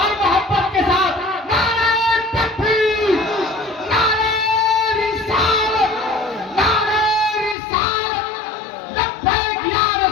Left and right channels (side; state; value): right; drops out; at 7.6 s